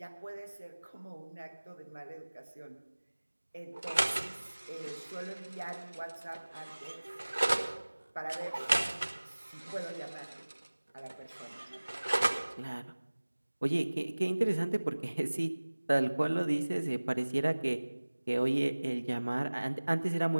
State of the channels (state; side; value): inverted; both; correlation -1.00